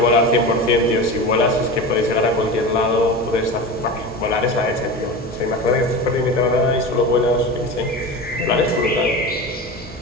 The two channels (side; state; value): both; normal; correlation 0.28